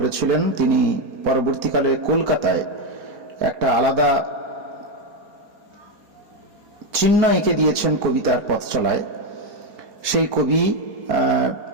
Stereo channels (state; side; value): late; left; 4.2 ms